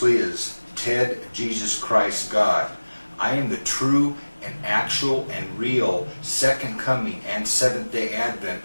is Ted Jesus Christ God. I am the true and actual and real second coming and Seventh-day Advent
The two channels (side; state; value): both; inverted; correlation -1.00